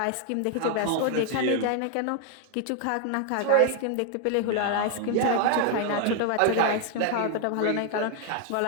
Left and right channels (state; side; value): different; both; correlation 0.00